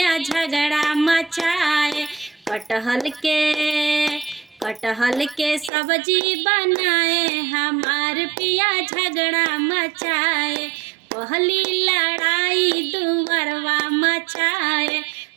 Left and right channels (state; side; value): drops out; left; at 5.7 s